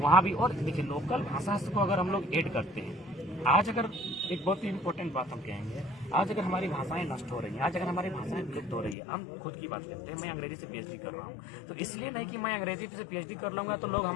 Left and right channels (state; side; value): drops out; right; at 9.0 s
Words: भी। और देखिए, लोकल भाषा को अगर हम लोग ऐड करते हैं, आज अगर एक बहुत ही इम्पोर्टेंट बात हम कहेंगे, आज अगर हमारी भाषाएं नष्ट हो रही हैं, आज अगर हमारी भाषाएं विलुप्त हो रही है, हम खुद की बात करते हैं, मैं अंग्रेजी से पीएचडी कर रहा हूँ, तो इसलिए नहीं कि मैं अंग्रेजी से पीएचडी कर लूंगा तो लोग